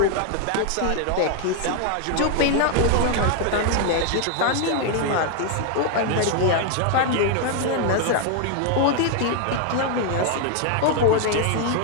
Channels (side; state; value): both; different; correlation 0.00